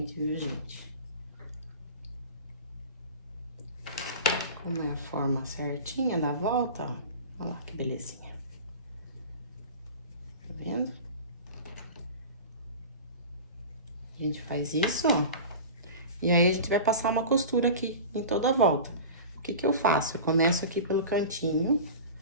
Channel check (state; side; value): inverted; both; correlation -0.33